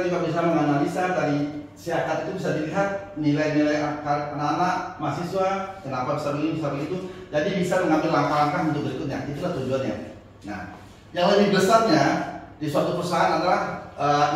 juga bisa menganalisa dari SIAKA itu bisa dilihat nilai-nilai anak-anak mahasiswa, kenapa bisa begini, bisa begitu. Jadi bisa mengambil langkah-langkah untuk berikutnya. Itulah tujuannya. Nah, yang lebih besarnya di suatu perusahaan adalah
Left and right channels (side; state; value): both; identical; correlation 1.00